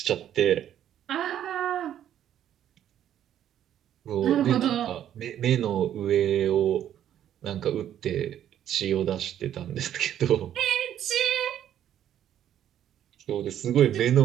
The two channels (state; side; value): quieter; left; 10.7 dB